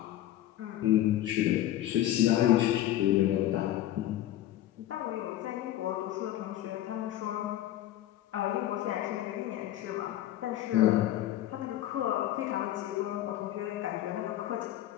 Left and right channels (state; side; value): quieter; right; 13.4 dB